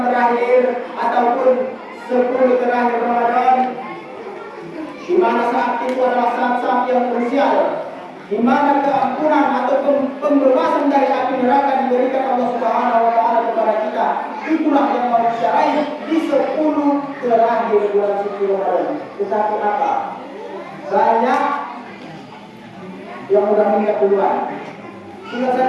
terakhir ataupun 10 terakhir Ramadan, di mana saat itu adalah saat-saat yang krusial, di mana keampunan ataupun pembebasan dari api neraka diberikan Allah Subhanahu wa taala kepada kita. Itulah yang mau kita raih di 10 terakhir bulan suci Ramadan. Tetapi apa? Banyak yang udah meninggal duluan. Tinggal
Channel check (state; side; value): identical; both; correlation 1.00